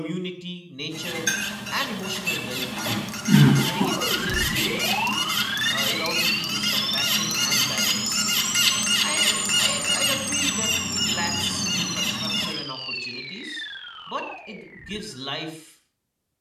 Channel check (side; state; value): both; identical; correlation 1.00